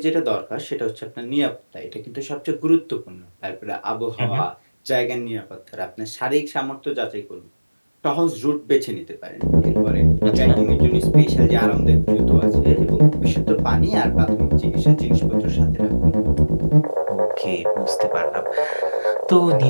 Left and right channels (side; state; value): both; inverted; correlation -1.00